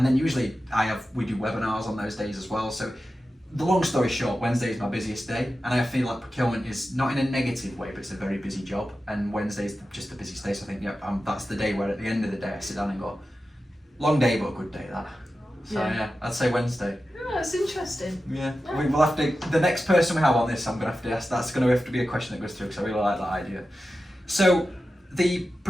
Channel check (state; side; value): normal; both; correlation 0.93